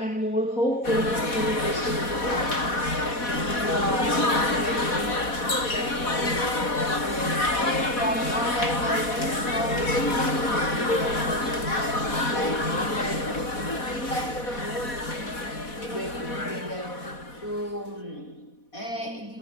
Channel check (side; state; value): right; late; 4.1 ms